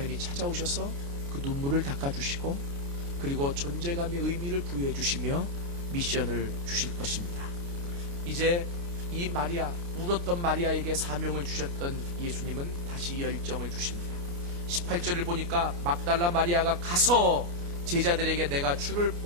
찾아오셔서 그 눈물을 닦아주시고 그리고 존재감의 의미를 부여해 주시며 미션을 주실 것입니다. 이제 이 마리아, 울었던 마리아에게 사명을 주셨던 예수님은 다시 열정을 주십니다. 18절을 보니까 막달라 마리아가 가서 제자들에게 내가 주를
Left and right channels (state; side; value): late; left; 29 ms